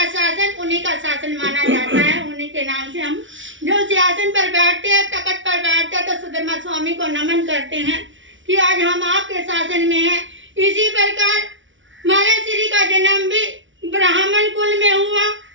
शासन, उन्हीं का शासन माना जाता है। उन्हीं के नाम से हम जो सिंहासन पर बैठते हैं, तखत पर बैठते हैं, तो सुधर्मा स्वामी को नमन करते हैं कि आज हम आपके शासन में हैं। इसी प्रकार महाराज श्री का जन्म भी ब्राह्मण कुल में हुआ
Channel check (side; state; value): left; late; 0.56 ms